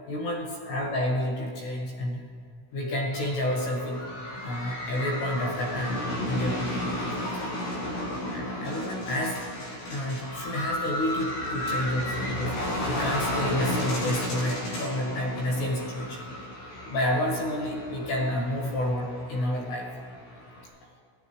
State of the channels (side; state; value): right; late; 16 ms